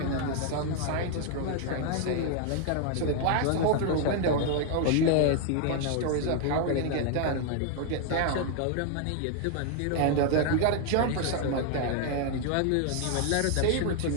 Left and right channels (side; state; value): both; different; correlation 0.00